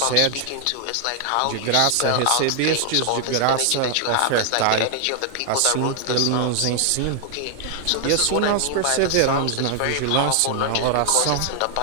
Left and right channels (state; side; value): different; both; correlation 0.00